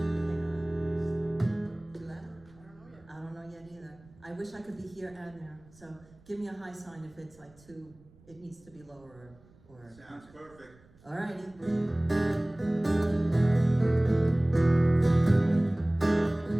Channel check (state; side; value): noise; right; rumble, 27 dB below the sound